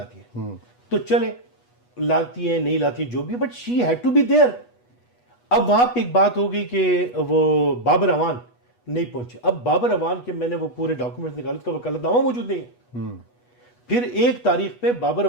ہیں. تو چلے لاتی ہیں نہیں لاتی جو بھی, but she had to be there. اب وہاں پہ ایک بات ہو گئی کہ وہ بابر اعوان نہیں پہنچے. اب بابر اعوان کے میں نے وہ پورے ڈاکومنٹس نکالے, اس کا وکالت نامہ موجود نہیں ہے. پھر ایک تاریخ پہ بابر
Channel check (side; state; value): right; late; 8.2 ms